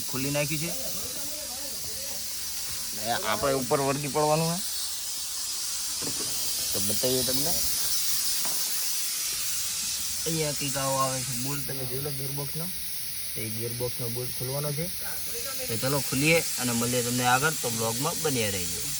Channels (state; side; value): identical; both; correlation 1.00